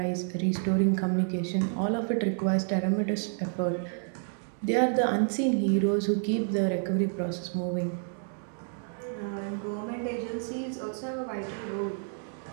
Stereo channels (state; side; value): silent; left; 57 dB below the other